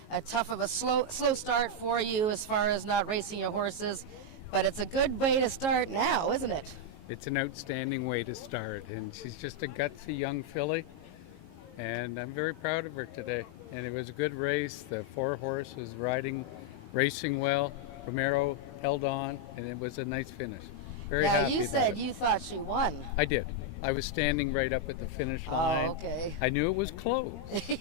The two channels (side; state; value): right; late; 19 ms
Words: tough of a slow start for you as far as not racing your horses, but it's a good way to start now, isn't it? It's an outstanding way to start, and she's just a gutsy young filly, and I'm very proud of her today. And it was a good race. The 4-horse was racing well. Romero held on, and it was a nice finish. Very now, happy you about said it. you thought she won. I did. I was standing right up at the finish line. Okay. I knew it was close.